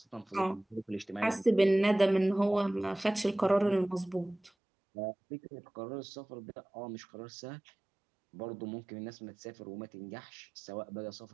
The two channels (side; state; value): left; drops out; at 4.5 s